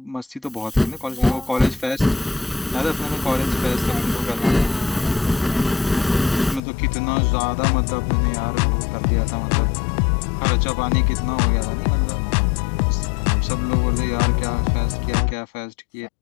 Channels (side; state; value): right; drops out; at 6.6 s